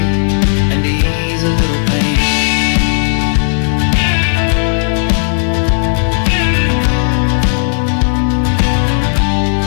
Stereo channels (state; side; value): silent; right; digital silence